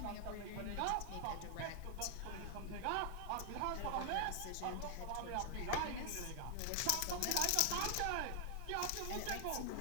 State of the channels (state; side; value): different; both; correlation 0.00